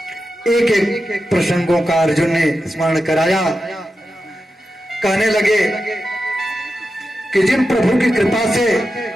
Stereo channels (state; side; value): normal; both; correlation 0.90